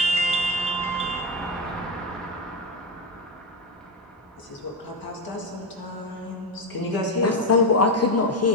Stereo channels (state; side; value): normal; both; correlation 0.11